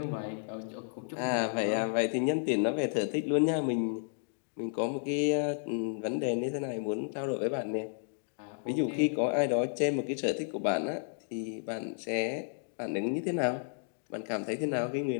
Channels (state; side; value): silent; right; digital silence